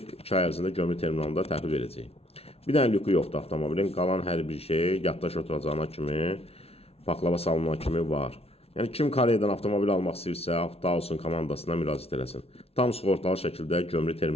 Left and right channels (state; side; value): late; right; 0.30 ms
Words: 2 ay ərzində gömrük terminalında təhvil verəcək. Bir dənə lükü yoxdur avtomobilin. Qalan hər bir şey yaddaş oturacağına kimi, paklava salınana kimi var. Yəni kim Koreyadan avtomobil almaq istəyirsə, Avtoalson komandasına müraciət eləsin. Tam sığortalı şəkildə gömrük